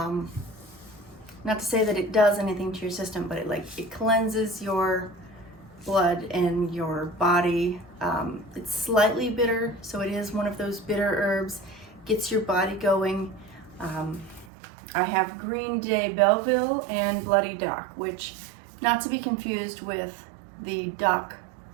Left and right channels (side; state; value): left; drops out; at 14.5 s